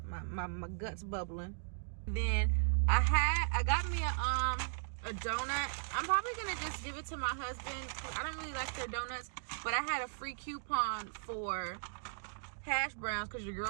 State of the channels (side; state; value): left; silent; digital silence